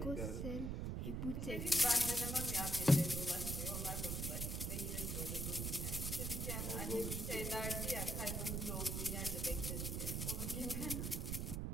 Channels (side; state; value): right; noise; rumble, 1 dB below the sound